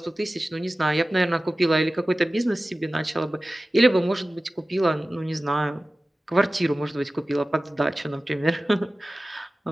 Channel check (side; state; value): both; normal; correlation 0.96